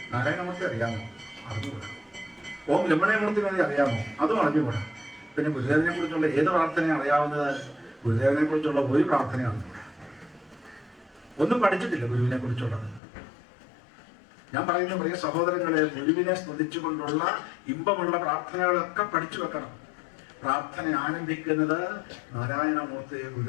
നാരായണമൂർത്തി അറിയാമോ? അറിഞ്ഞുകൂടാ. ഓം രമണയമൂർത്തി വേണ്ടി അറിയാമോ? അതും അറിഞ്ഞുകൂടാ. പിന്നെ ഗുരുദേവനെ കുറിച്ചുള്ള ഏത് പ്രാർത്ഥന അറിയാവുന്നത്? ഗുരുദേവനെ കുറിച്ചുള്ള ഒരു പ്രാർത്ഥന അറിഞ്ഞുകൂടാ. ഒന്നും പഠിച്ചിട്ടില്ല ഗുരുവിനെ കുറിച്ചുള്ളത്. ഞാൻ പറയുന്ന പ്രിയ സഹോദരങ്ങളെ, ഗുരുവിനെ സ്തുതിച്ചുകൊണ്ടുള്ള ഇമ്പമുള്ള പ്രാർത്ഥനകളൊക്കെ പഠിച്ചു വെക്കണം. പ്രാർത്ഥന ആരംഭിക്കുന്നത് നാരായണമൂർത്തി,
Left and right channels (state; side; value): drops out; right; at 13.0 s